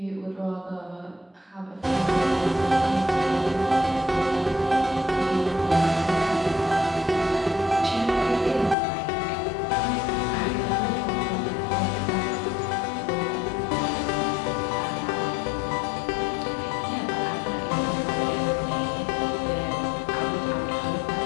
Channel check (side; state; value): right; drops out; at 8.8 s